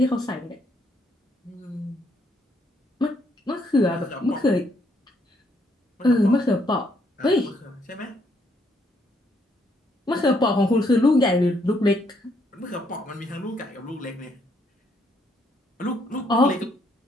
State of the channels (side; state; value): both; normal; correlation 0.72